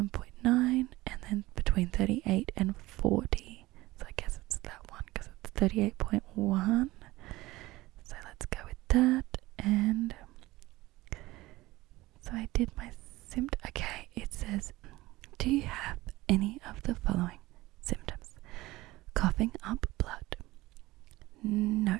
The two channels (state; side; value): quieter; left; 18.8 dB